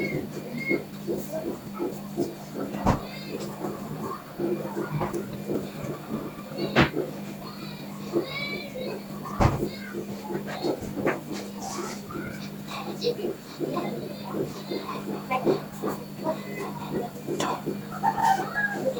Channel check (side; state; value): both; identical; correlation 1.00